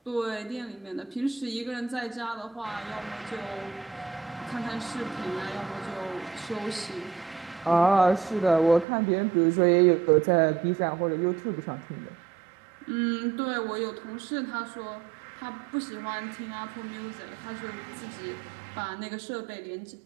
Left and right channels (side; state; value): left; drops out; at 8.8 s